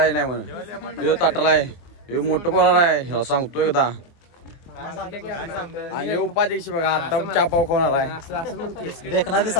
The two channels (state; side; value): late; right; 23 ms